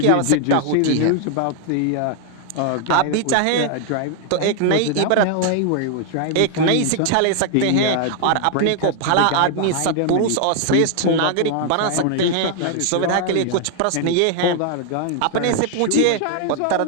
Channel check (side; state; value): both; different; correlation 0.00